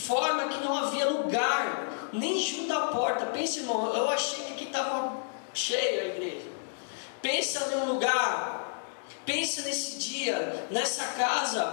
que não havia lugar, nem junto à porta. Pensa, irmão, eu achei que aqui estava cheia a igreja. Pensa num lugar, pensa nesse dia, nessa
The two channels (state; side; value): silent; right; digital silence